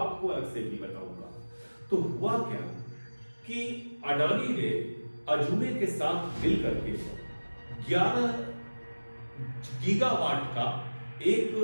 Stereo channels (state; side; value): inverted; both; correlation -1.00